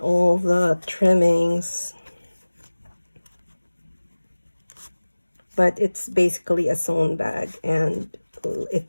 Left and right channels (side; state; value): both; inverted; correlation -1.00